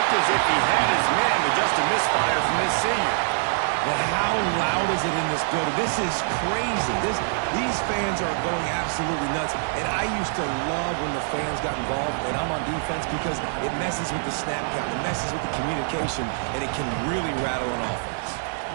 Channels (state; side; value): silent; left; 56 dB below the other